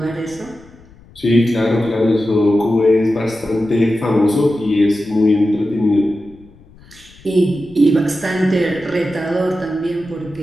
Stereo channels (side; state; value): left; noise; rumble, 24 dB below the sound